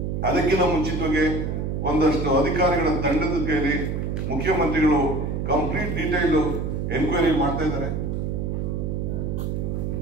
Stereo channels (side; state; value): right; noise; hum, 2 dB below the sound